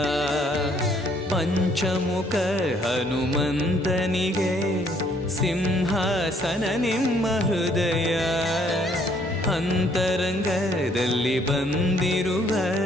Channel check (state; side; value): normal; both; correlation 0.64